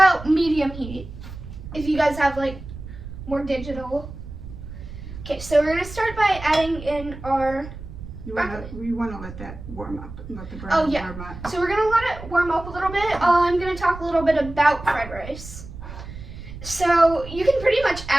medium heat. If you guys have like more digital. Okay, so we're gonna start by adding in our. We want to let that warm up, let the burner warm up. So we're gonna let it warm up a little bit. I'm gonna talk a little bit about fried rice. So you can pretty much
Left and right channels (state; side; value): noise; right; rumble, 12 dB below the sound